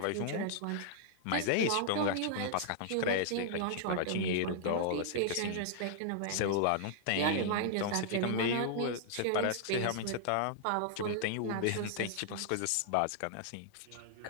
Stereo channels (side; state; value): both; different; correlation -0.01